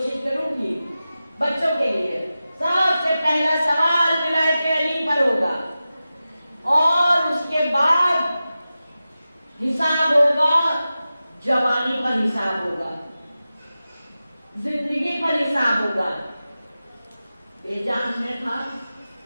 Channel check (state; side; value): inverted; both; correlation -0.94